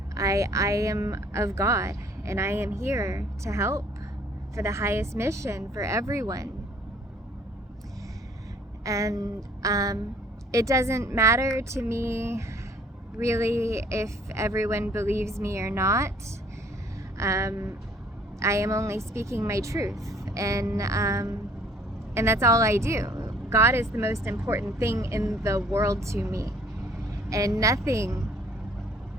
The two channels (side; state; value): both; normal; correlation 0.57